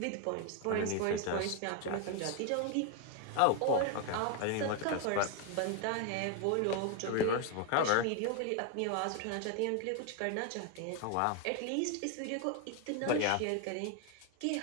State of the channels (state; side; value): different; both; correlation 0.01